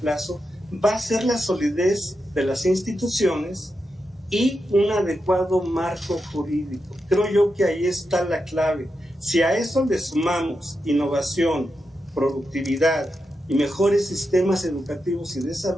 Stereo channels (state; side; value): normal; both; correlation 0.87